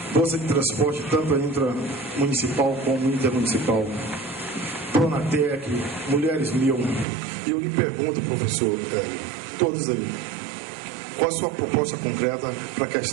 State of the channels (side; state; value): left; drops out; at 7.1 s